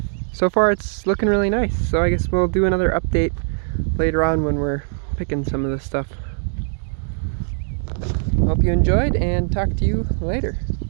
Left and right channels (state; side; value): silent; left; 59 dB below the other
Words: So far it's looking really nice, so I guess we'll do another update later on when we're picking some of this stuff. Hope you enjoyed, and talk to you later.